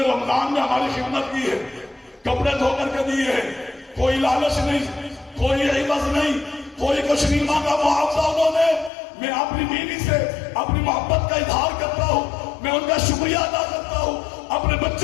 رمضان میں ہماری خدمت کی ہے، کپڑے دھو کر کے دیے ہیں، کوئی لالچ نہیں، کوئی عوض نہیں، کوئی کچھ نہیں مانگا، معاوضہ انہوں نے۔ میں اپنی بیوی سے اپنی محبت کا اظہار کرتا ہوں، میں ان کا شکریہ ادا کرتا ہوں، اپنے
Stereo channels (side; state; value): right; drops out; at 8.9 s